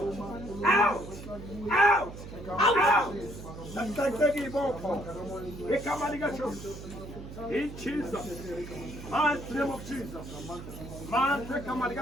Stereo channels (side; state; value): right; noise; hum, 12 dB below the sound